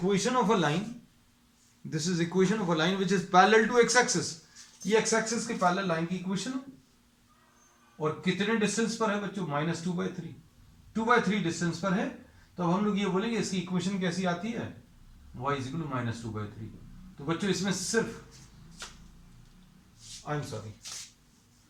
of a line, this is equation of a line which is parallel to x axis. ये x एक्सिस के पैरेलल लाइन की इक्वेशन है, और कितने डिस्टेंस पर है बच्चों? -2/3, 2/3 डिस्टेंस पर है। तो अब हम लोग ये बोलेंगे इसकी इक्वेशन कैसी आती है? y is equal to -2/3। तो बच्चों इसमें सिर्फ, I am sorry,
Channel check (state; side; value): identical; both; correlation 1.00